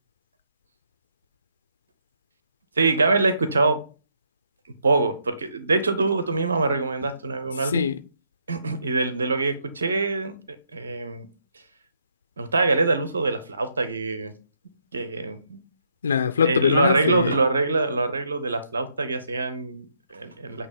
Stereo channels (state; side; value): inverted; both; correlation -0.74